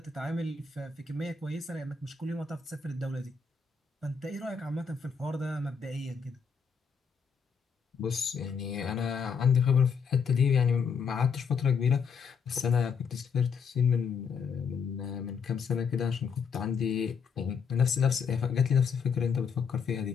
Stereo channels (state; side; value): quieter; right; 6.1 dB